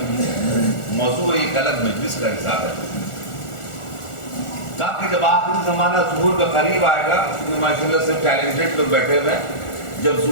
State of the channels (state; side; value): late; right; 1.4 ms